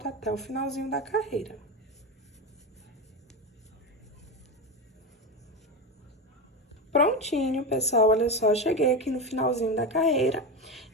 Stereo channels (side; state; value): both; normal; correlation 0.17